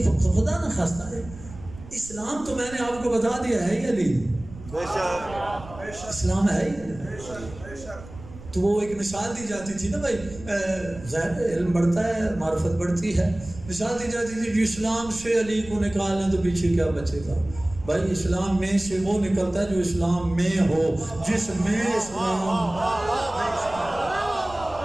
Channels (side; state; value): right; noise; rumble, 16 dB below the sound